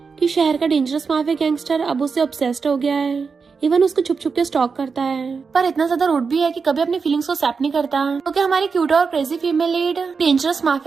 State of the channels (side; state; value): left; quieter; 5.2 dB